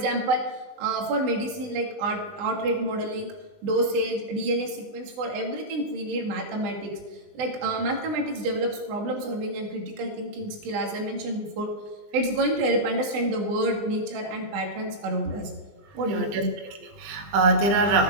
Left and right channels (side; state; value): left; late; 20 ms